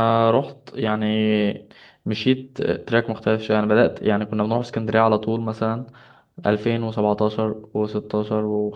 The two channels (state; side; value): identical; both; correlation 1.00